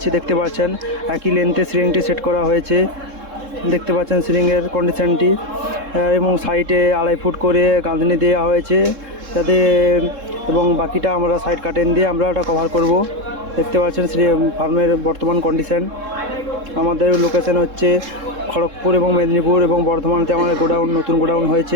দেখতে পাচ্ছেন। একই লেন্থে সিলিংটি সেট করা হয়েছে। দেখতে পাচ্ছেন সিলিংয়ের কন্ডিশনটি, এবং সাইডে 2.5 ফুট করে গাঁথনি দেওয়া হয়েছে যাতে, এবং বাকিটা আমরা সাইড কাটেন দিয়ে আমরা ওটা কভার করব। দেখতে পাচ্ছেন ফার্মের বর্তমান কন্ডিশন। আমাদের লোকেশন হচ্ছে খড়গপুর এবং মেদিনীপুর এবং বর্ধমানতে আমাদের নতুন গোডাউন হয়েছে।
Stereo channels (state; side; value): late; left; 3.7 ms